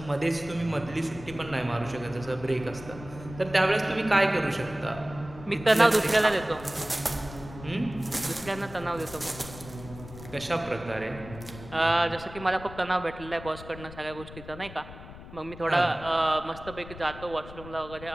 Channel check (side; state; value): left; noise; rumble, 15 dB below the sound